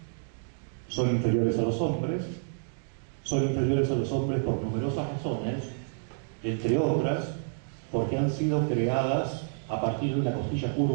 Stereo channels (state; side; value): silent; left; digital silence